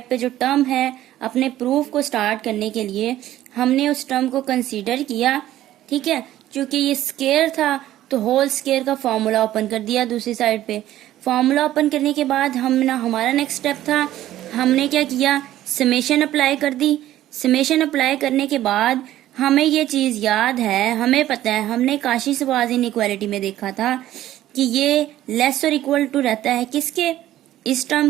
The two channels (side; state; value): left; quieter; 13.6 dB